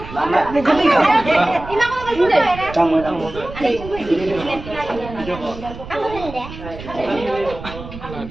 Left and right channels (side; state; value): right; noise; rumble, 13 dB below the sound